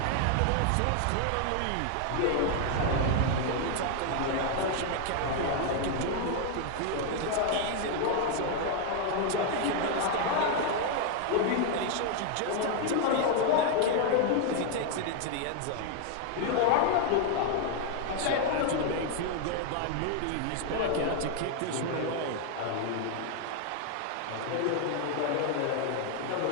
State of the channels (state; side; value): different; both; correlation 0.00